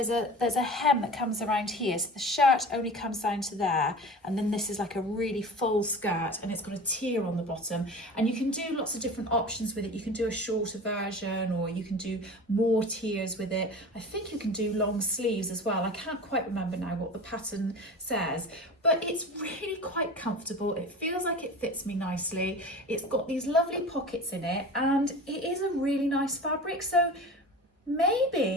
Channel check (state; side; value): normal; both; correlation 0.36